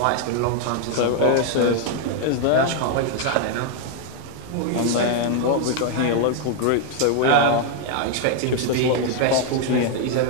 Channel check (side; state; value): both; different; correlation 0.00